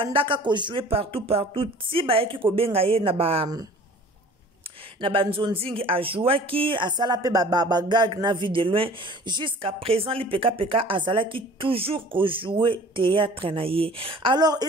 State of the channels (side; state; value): both; normal; correlation 0.46